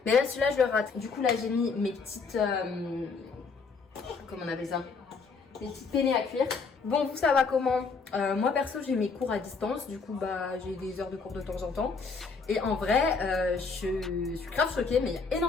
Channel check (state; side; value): quieter; right; 4.8 dB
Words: Mais là celui-là je le rate. Du coup là j'ai mis mes petites... comment on appelle ça? Mes petites penne à cuire. Bon, vous ça va comment? Moi perso j'ai mes cours à distance, du coup bah j'ai des heures de cours de temps en temps. Et en vrai je suis grave choquée, mais il y a